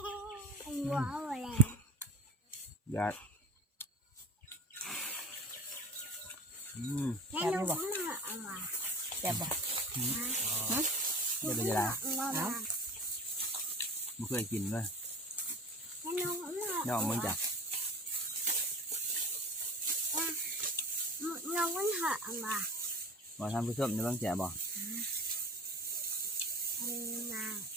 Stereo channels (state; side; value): normal; both; correlation 0.36